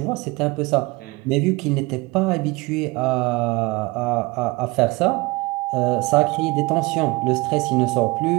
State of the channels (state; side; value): quieter; left; 23.7 dB